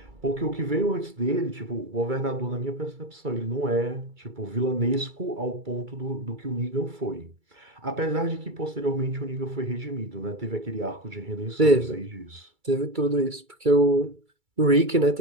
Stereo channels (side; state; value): left; late; 2.3 ms